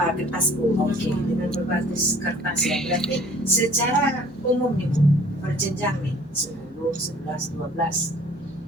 Bu. Oke, dengan berbasis kertas ya. Berarti secara umum nih Bu, berjenjang nih 10, 11, 12.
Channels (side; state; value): both; normal; correlation 0.53